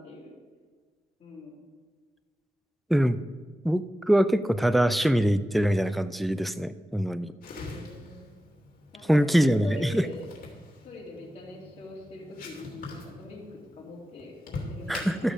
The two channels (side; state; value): both; normal; correlation 0.94